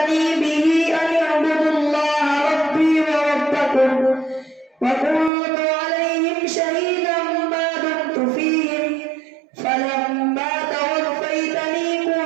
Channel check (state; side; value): drops out; left; at 5.3 s